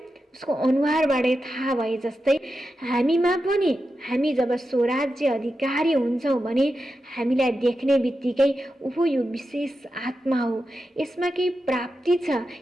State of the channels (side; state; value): both; normal; correlation 0.90